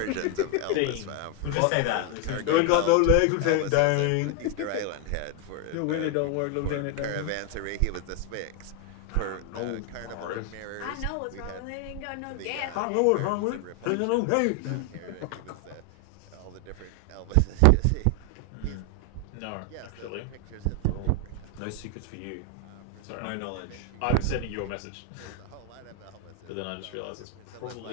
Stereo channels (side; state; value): both; different; correlation 0.01